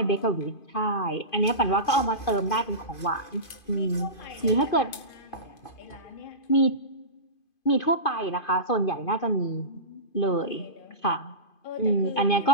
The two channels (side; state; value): right; late; 2.5 ms